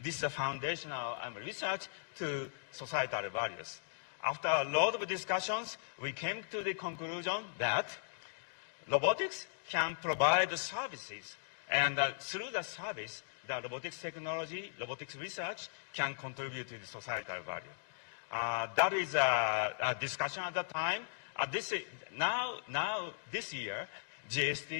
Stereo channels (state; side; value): silent; right; digital silence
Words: this foundational research to societal values. After a lot of discussions, we came to the conclusion that robotics can provide services, and through the service, the robotics technology, robotics research can contribute to the societal value. That is a discussion at the time. Now this year,